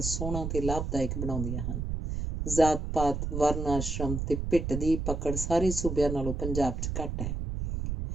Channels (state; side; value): noise; right; rumble, 3 dB below the sound